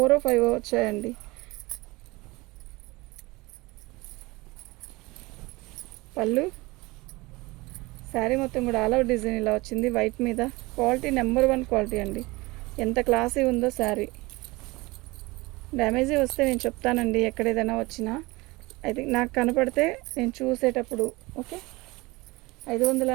or 5 వచ్చాయండి. పళ్ళు, శారీ మొత్తం కూడా ఆల్ ఓవర్ డిజైన్ ఇలా వచ్చింది వైట్ మీద. క్వాలిటీ నెంబర్ 1 క్వాలిటీ అండి, ఎంత క్లాసీ ఉందో శారీ. డ్యామేజీ వస్తే నేను చెప్తానండి, ఎక్కడ ఏదైనా వచ్చినా అయితే నాకు కనపడితే నేను చూసేటప్పుడు. ఓకే,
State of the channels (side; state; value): left; quieter; 22.6 dB